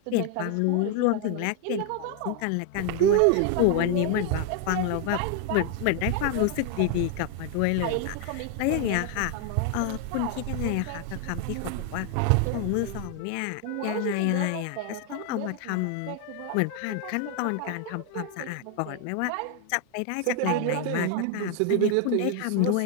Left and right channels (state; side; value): different; both; correlation 0.00